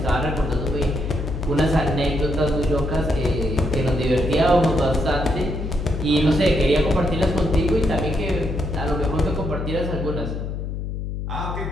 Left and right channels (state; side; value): noise; left; hum, 5 dB below the sound